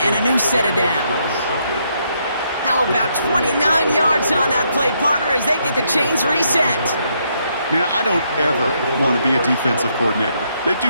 and a new set of downs. How about 29 yards on that play, partner, as they get the chains reset? Man, I don't ever want to be a defensive coordinator. They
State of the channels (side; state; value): both; inverted; correlation -0.75